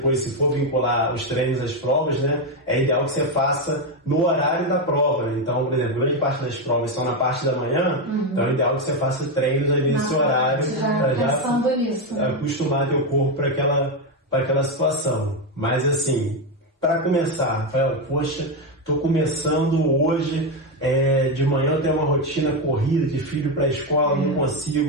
se for vincular os treinos às provas, né? É ideal que você faça no horário da prova, né? Então, por exemplo, grande parte das provas estão na parte da manhã, então é ideal que você faça treinos ali nesse horário para já acostumar teu corpo para aquela situação. Mas assim, para começar, Rafael, poxa, estou começando hoje, de manhã eu tenho uma rotina corrida de filho para a escola, não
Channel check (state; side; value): normal; both; correlation 0.08